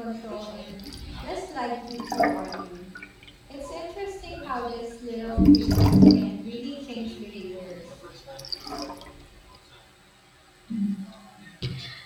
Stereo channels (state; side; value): identical; both; correlation 1.00